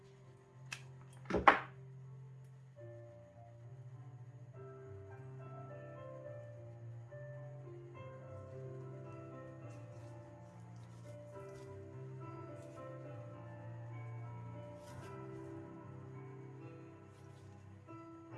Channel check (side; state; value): both; identical; correlation 1.00